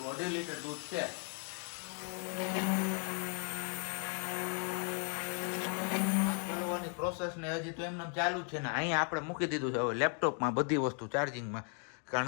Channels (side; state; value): right; quieter; 39.6 dB